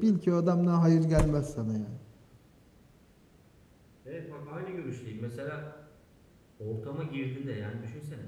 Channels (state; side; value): identical; both; correlation 1.00